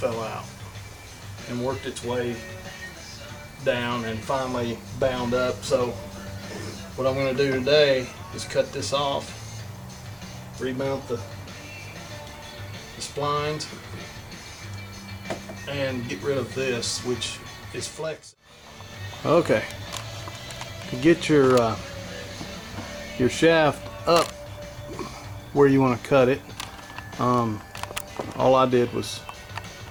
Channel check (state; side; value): identical; both; correlation 1.00